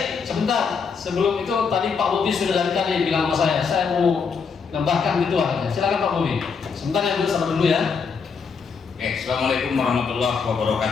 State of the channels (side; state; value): right; quieter; 5.6 dB